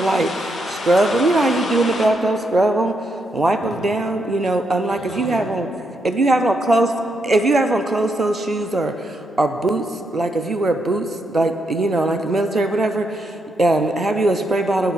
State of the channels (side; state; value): both; normal; correlation 0.80